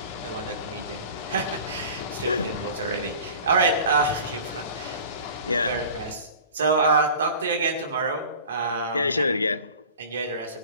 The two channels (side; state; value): both; inverted; correlation -0.41